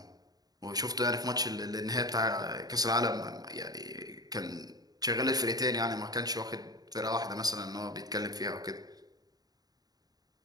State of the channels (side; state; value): left; late; 0.19 ms